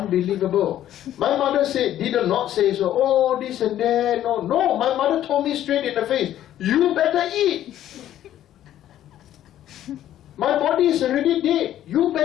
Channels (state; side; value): quieter; right; 12.1 dB